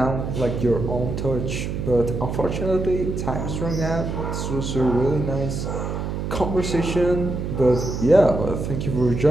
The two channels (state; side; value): noise; right; hum, 3 dB below the sound